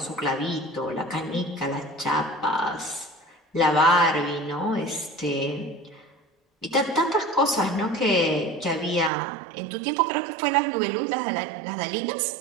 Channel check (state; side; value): drops out; left; at 9.1 s